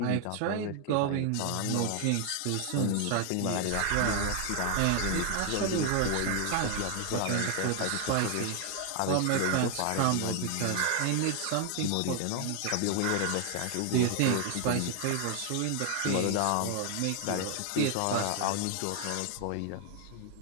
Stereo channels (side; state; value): both; different; correlation 0.00